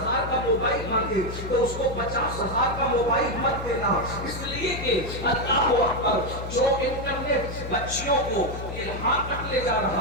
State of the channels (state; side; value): noise; left; hum, 8 dB below the sound